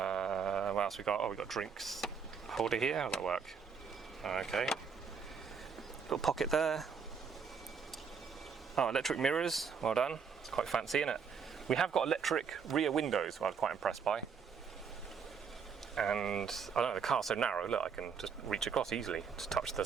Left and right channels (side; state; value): left; quieter; 6.2 dB